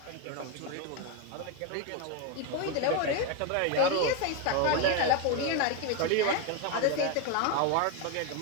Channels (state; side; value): different; both; correlation 0.02